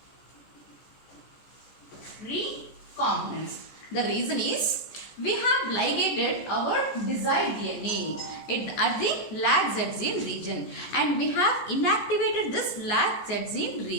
The reason is we have ligated our desired DNA at the lag Z gene region, and we have inactivated this lag Z gene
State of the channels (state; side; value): late; right; 14 ms